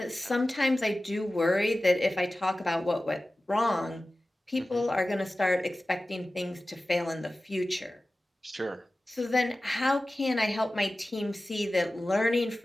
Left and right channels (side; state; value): both; normal; correlation 0.96